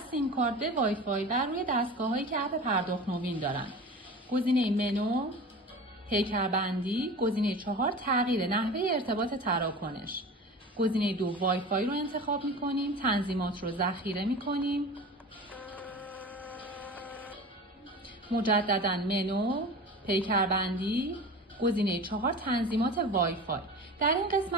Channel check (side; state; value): both; normal; correlation 0.35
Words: کارت به وای فای بر روی دستگاه‌هایی که اپ پرداخت نوین دارند. گزینه منو، پیکربندی، گزینه 4 تغییر نحوه ارتباط تراکنش. گزینه 2 وای فای رو انتخاب می‌کنیم، تنظیمات رو ذخیره می‌کنیم. مجدداً منو، پیکربندی، گزینه 4 تنظیمات وای فای. در این